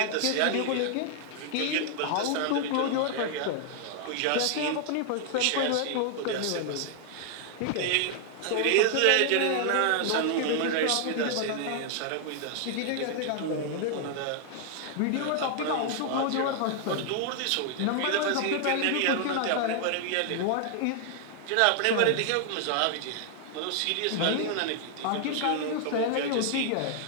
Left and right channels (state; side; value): different; both; correlation 0.00